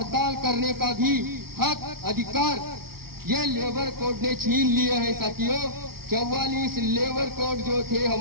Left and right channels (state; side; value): late; left; 0.94 ms